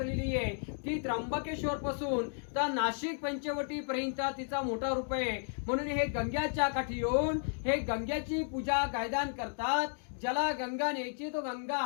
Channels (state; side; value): silent; right; digital silence